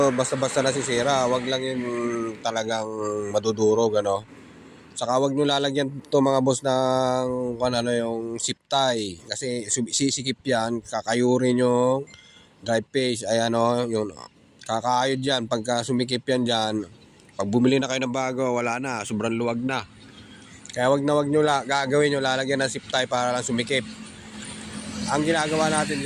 basta-basta nasisira. Wag lang yung talagang madudurog, ano? Saka wag nyo lalagyan to mga boss ng yung zip tie. Kasi sisikip yan, kakayurin yung drive page. Ayan yung kakayod yan. Pagka sumikip yan dyan, pag bumili na kayo ng bago, wala na, sobrang luwag na. Kaya wag nyo gagawin nyo, lalagyan ng zip tie para lang sumikip. Ang ginagawa natin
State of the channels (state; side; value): identical; both; correlation 1.00